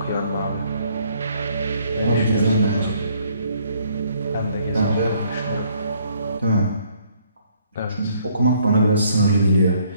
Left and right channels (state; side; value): inverted; both; correlation -0.65